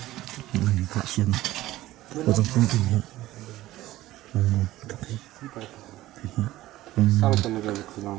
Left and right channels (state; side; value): quieter; left; 16.1 dB